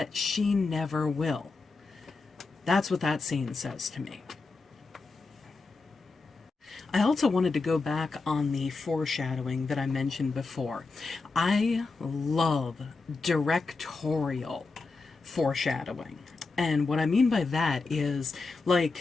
she never will. That's what that scene says to me. I also wanted to go back on the foreshadowing that I mentioned before. I love directorial foreshadowing. And what I mean by that is, like,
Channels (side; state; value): right; quieter; 4.0 dB